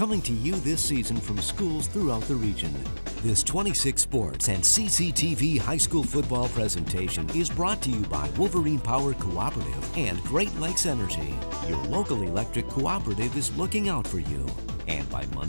to you this season from schools throughout the region. This 26 Sports and CCTV high school football presentation is brought to you by Wolverine Power Cooperative and Great Lakes Energy. Your local electric cooperative is looking out for you. And by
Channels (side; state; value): both; inverted; correlation -1.00